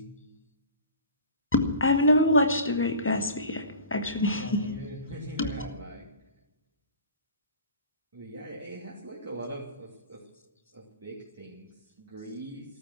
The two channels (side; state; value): both; inverted; correlation -0.39